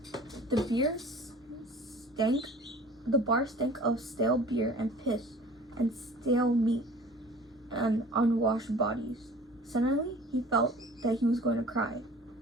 The bar stank of stale beer and piss and stale meat and unwashed bodies. Suddenly, he felt that he was going to cry.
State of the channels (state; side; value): normal; both; correlation 0.46